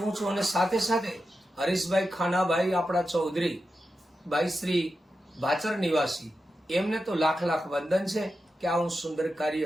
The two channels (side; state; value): both; normal; correlation 0.90